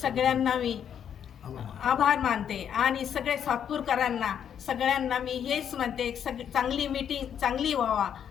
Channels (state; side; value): quieter; right; 8.7 dB